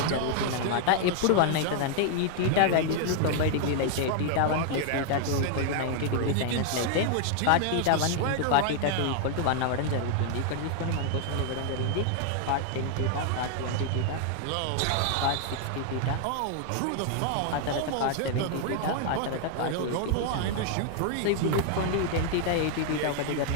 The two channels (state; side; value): different; both; correlation 0.00